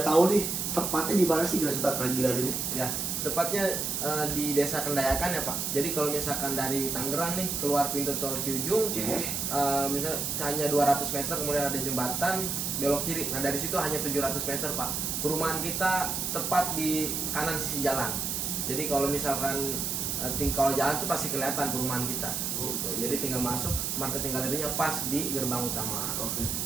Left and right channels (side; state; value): right; noise; hiss, 1 dB below the sound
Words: tahu nih tepatnya di mana sih Grasuta Keragilan ini? Ya, tepatnya di Desa Kendayakan ya Pak. Jadi kalau misalkan dari Tangerang nih keluar pintu tol Ciujung, Oke. misalnya hanya 200 meter kemudian ada jembatan belok kiri. Nah dari situ hanya 700 meter Pak. Perumahan kita tepat di kanan sisi jalan. Jadi kalau misalkan kalau jalan tuh pasti kelihatan perumahan kita. Gitu. Jadi tinggal masuk, marketing galerinya pas di gerbang utama. Oke.